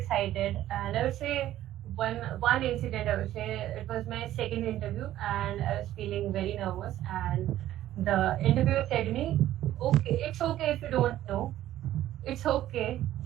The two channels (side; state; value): left; quieter; 13.4 dB